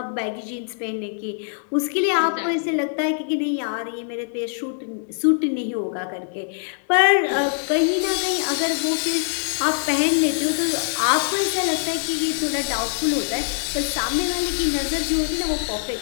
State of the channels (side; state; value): right; silent; 63 dB below the other